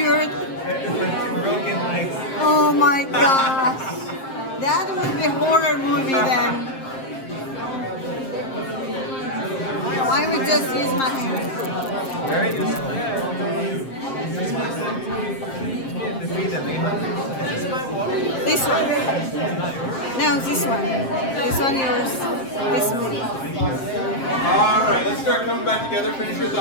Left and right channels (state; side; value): late; right; 7.5 ms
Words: Broken legs. Oh my gosh. That would be a horror movie then. I would just use my hand. Very useful. This one. No, this one. This one yours. This one. All right, let's start coming back together. Finish your